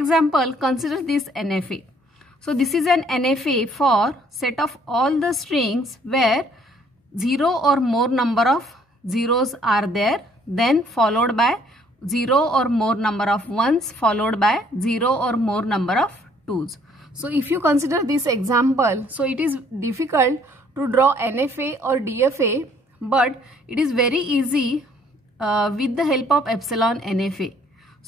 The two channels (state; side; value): normal; both; correlation 0.62